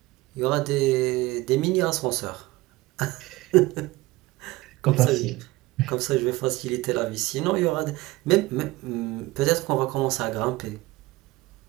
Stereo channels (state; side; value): quieter; left; 20.0 dB